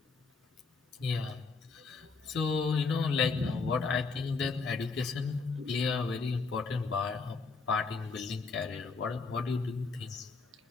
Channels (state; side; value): quieter; right; 4.5 dB